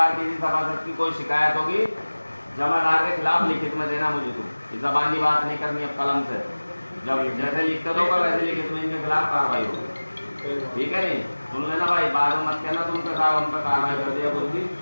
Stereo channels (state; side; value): inverted; both; correlation -1.00